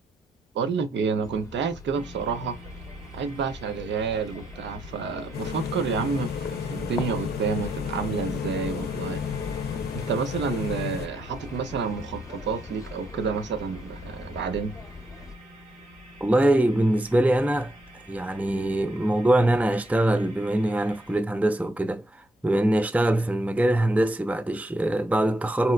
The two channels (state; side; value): normal; both; correlation 0.76